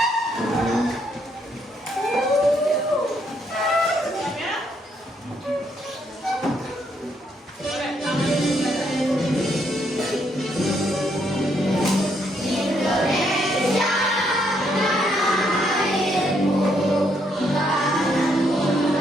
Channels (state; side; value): normal; both; correlation 0.73